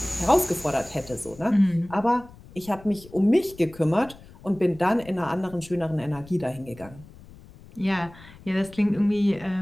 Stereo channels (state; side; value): noise; left; rumble, 21 dB below the sound